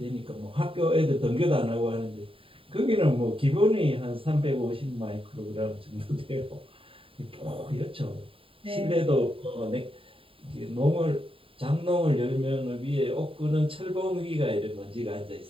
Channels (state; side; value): late; left; 0.26 ms